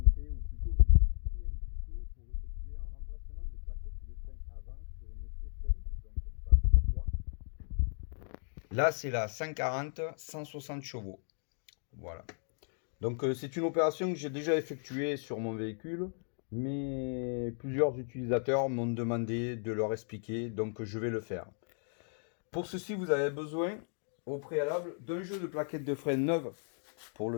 ou plutôt vous expliquer un tuto pour effectuer un remplacement de plaquettes de frein avant sur une C5, donc phase 3. Là c'est la 140 160 chevaux. Voilà. Donc c'est une opération que j'ai déjà effectuée sur mon véhicule, mais plusieurs utilisateurs m'ont demandé de leur expliquer, donc je vais le faire. Pour ceci vous avez besoin au préalable d'un jeu de plaquettes de frein neuves pour le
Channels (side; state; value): right; silent; 54 dB below the other